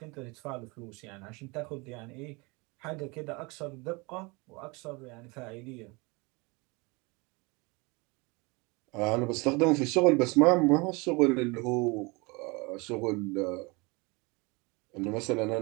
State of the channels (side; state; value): left; quieter; 27.1 dB